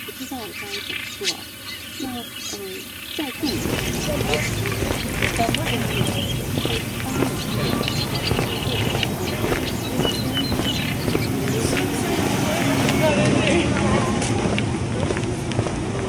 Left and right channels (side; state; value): both; identical; correlation 1.00